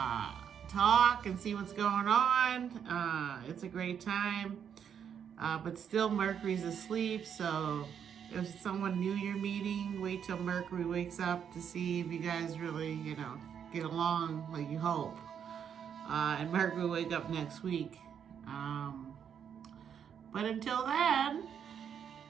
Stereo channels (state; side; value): quieter; left; 8.1 dB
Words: talk and see what's going on. It's a great time. But still Mercury's asleep, so if someone new you're meeting, wait till Mercury wakes up to see if you guys really, get along like you hope. And Mercury will wake up next week. But until then,